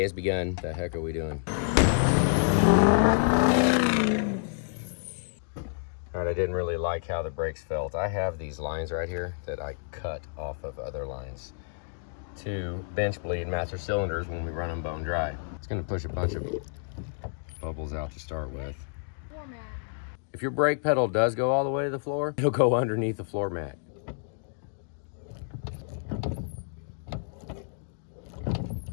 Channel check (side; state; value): right; silent; digital silence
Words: has begun. The heck are we doing? All right, I didn't really like how the brakes felt. I have these lines right here that I cut off of other lines to bench bleed master cylinders when we run them bone dry. It's gonna push a bunch of bubbles out to start with. If your brake pedal does go all the way to the floor, it'll go underneath the floor mat.